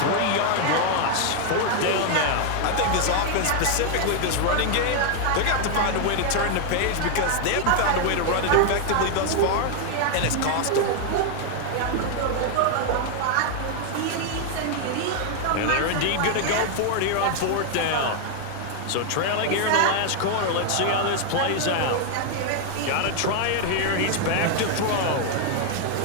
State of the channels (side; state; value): both; different; correlation 0.00